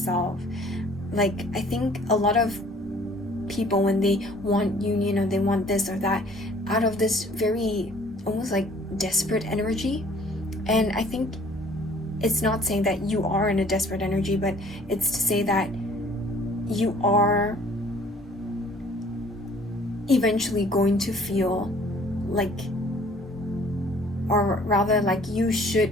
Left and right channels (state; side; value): normal; both; correlation 0.54